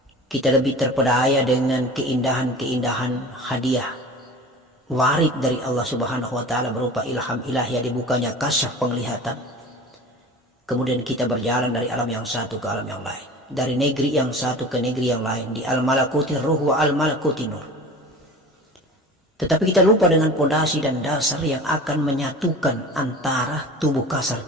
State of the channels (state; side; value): normal; both; correlation 0.38